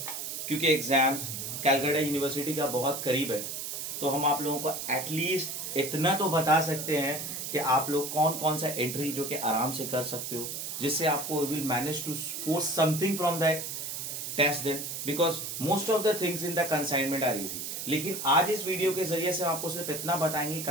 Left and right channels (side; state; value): right; noise; hiss, 5 dB below the sound